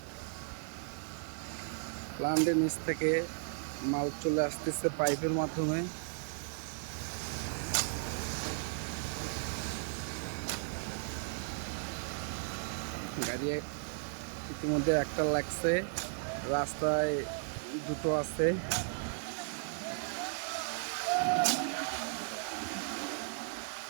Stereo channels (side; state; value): left; silent; digital silence